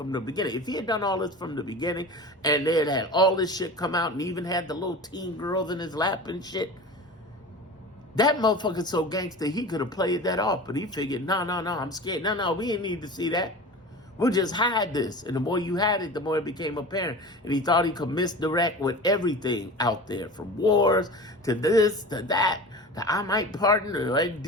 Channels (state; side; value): normal; both; correlation 0.34